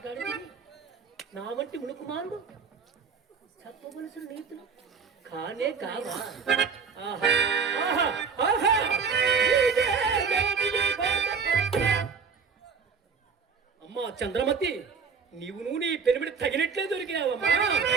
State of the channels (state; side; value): quieter; left; 5.7 dB